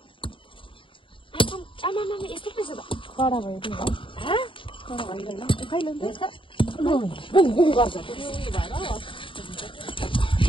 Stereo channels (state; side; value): late; right; 0.25 ms